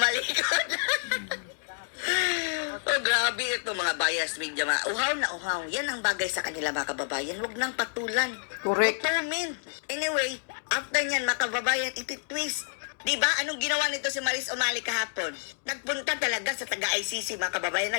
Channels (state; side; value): silent; right; digital silence